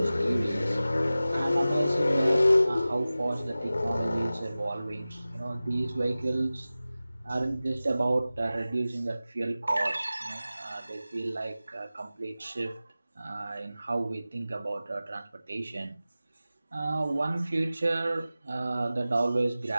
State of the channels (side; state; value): both; inverted; correlation -0.96